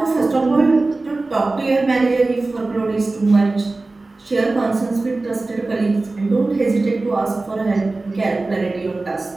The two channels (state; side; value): quieter; left; 3.3 dB